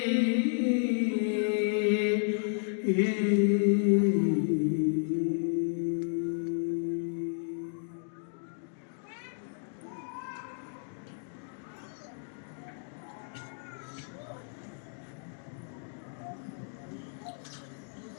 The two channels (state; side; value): silent; right; digital silence